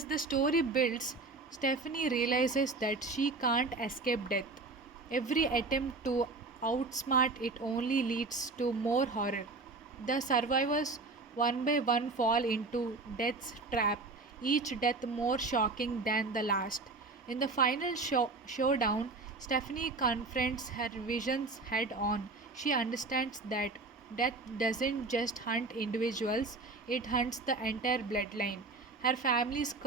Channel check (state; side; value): quieter; left; 3.7 dB